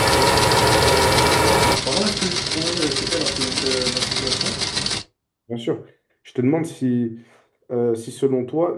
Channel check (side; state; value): both; identical; correlation 1.00